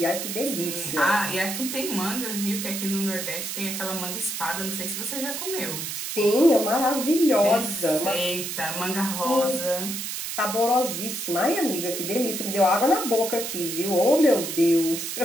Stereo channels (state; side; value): noise; right; hiss, 5 dB below the sound